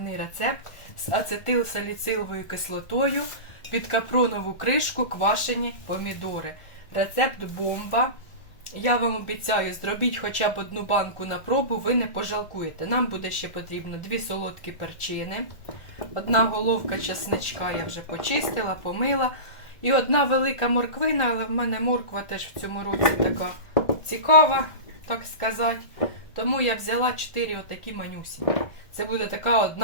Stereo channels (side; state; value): right; late; 1.7 ms